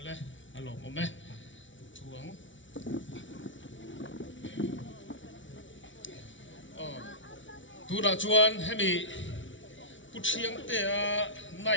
alo mo me thuang tu ra chuan hemi puchiang te a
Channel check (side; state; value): right; late; 0.56 ms